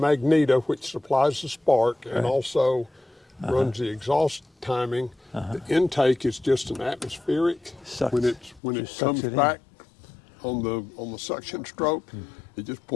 which supplies the spark, and also runs the exhaust timing. The intake is just an atmospheric. Sucks. When it Just sucks comes it in. back on the suction stroke, it just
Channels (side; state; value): right; drops out; at 8.6 s